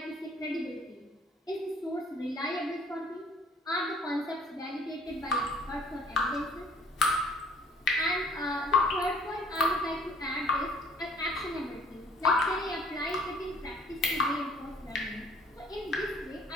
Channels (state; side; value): normal; both; correlation 0.56